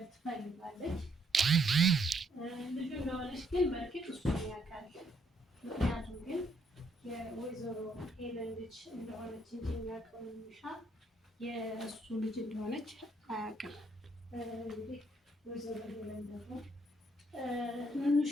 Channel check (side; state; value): both; normal; correlation 0.71